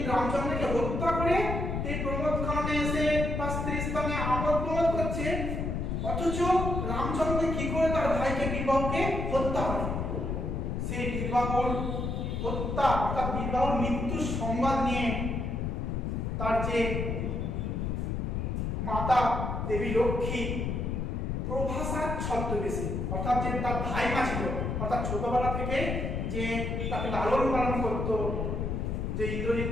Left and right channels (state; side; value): noise; left; rumble, 1 dB below the sound